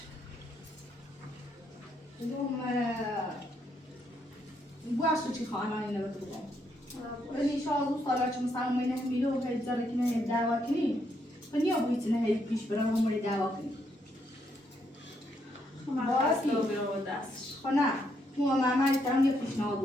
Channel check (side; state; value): both; normal; correlation 0.76